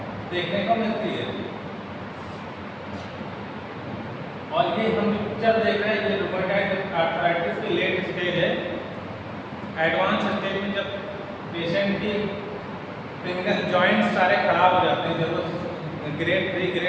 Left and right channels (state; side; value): identical; both; correlation 1.00